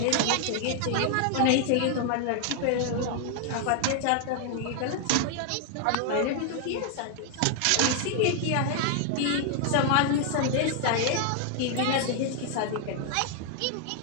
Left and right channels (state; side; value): different; both; correlation 0.00